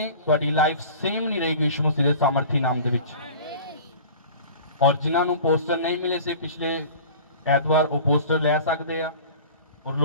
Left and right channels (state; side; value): inverted; both; correlation -0.40